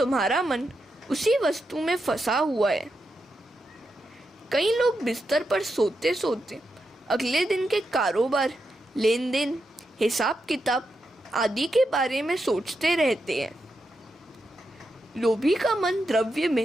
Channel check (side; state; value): both; normal; correlation 0.86